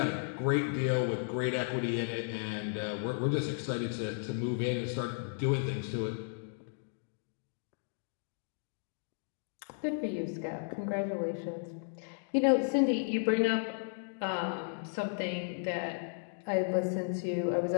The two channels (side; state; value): right; silent; digital silence